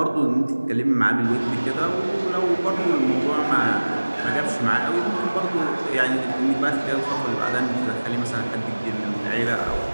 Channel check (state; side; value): inverted; both; correlation -1.00